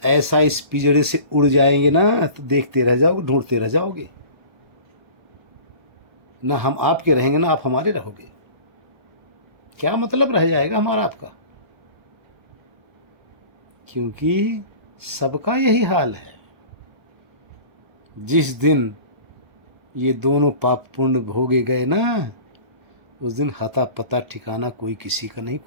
ऐसा इस पिंजड़े से उड़ जाएंगे ना, तो देखते रह जाओगे, ढूंढते रह जाओगे। ना हम आपके रहेंगे, ना आप हमारे रहोगे। क्या मतलब रह जाएगा हमारा आपका? क्योंकि सबका यही हाल है। जिस दिन ये दोनों पाप पुण्य भोगे गए ना, उस दिन हता पता ठिकाना कोई किसी का नहीं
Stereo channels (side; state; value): left; late; 1.2 ms